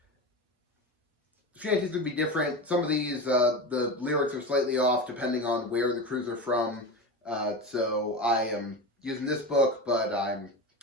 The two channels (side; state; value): both; normal; correlation 0.24